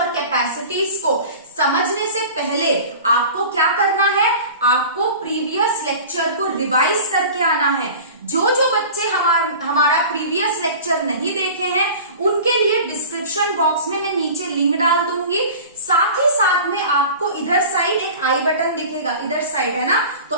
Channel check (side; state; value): both; inverted; correlation -0.38